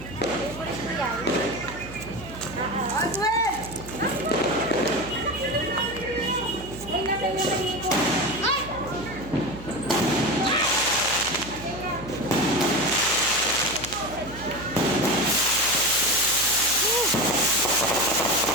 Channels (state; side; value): noise; right; hum, 14 dB below the sound